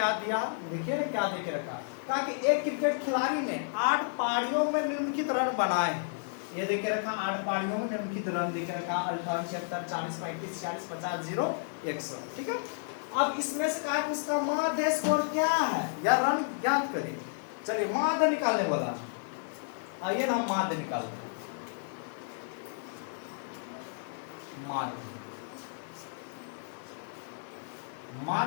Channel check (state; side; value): silent; right; 57 dB below the other